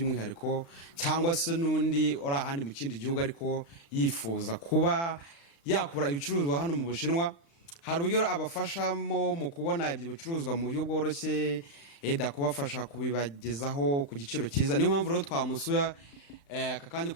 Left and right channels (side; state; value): right; late; 35 ms